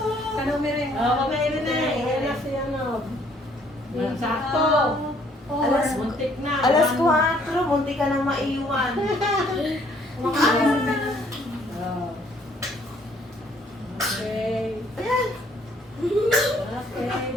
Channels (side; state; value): both; normal; correlation 0.63